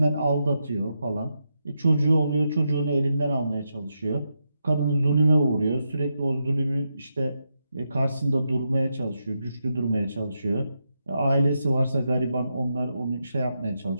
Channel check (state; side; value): inverted; both; correlation -0.85